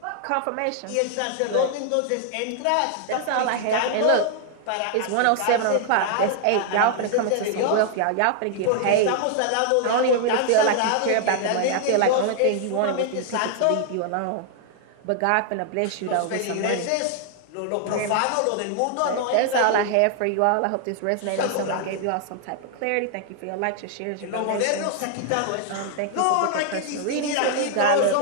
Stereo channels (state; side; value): different; both; correlation 0.00